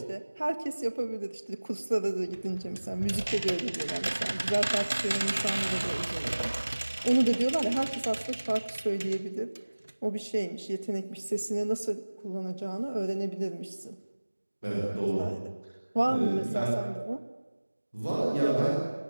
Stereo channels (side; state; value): both; inverted; correlation -1.00